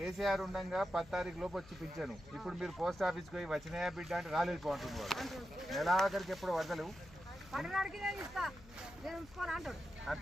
ఉండగా 10 తారీఖు లోపు వచ్చి పింఛను. ఇప్పుడు మీరు పోస్ట్ ఆఫీస్కి పోయి వచ్చినాయా బిడ్డ అంటే రాలేదు పోంటుంది వాడు. నెలాఖరికి ఎప్పుడు వదలవు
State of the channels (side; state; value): left; noise; hum, 20 dB below the sound